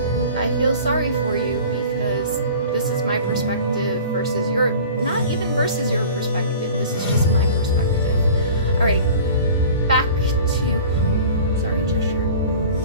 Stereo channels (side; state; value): both; inverted; correlation -0.41